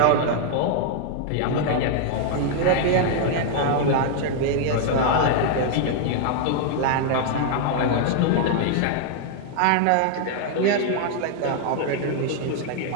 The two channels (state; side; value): different; both; correlation 0.00